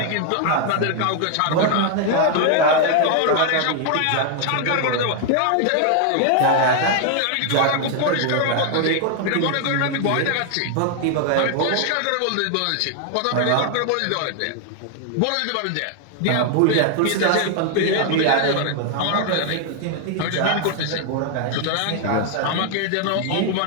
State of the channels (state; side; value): different; both; correlation 0.00